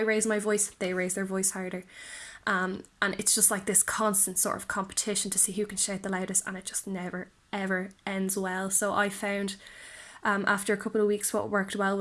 raised my voice, they raised their voice harder. And it's just like this constant sort of competition to see who can shout the loudest, and it just never ever ends well. So I found after a couple of weeks what worked well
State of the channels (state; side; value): identical; both; correlation 1.00